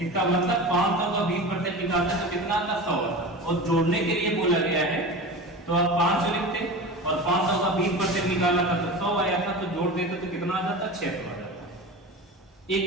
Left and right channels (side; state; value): both; normal; correlation 0.30